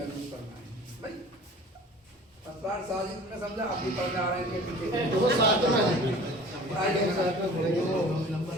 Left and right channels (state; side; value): normal; both; correlation 0.44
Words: करना है। भाई अस्तार साजिद में समझा आप भी पढ़ने आ रहे हैं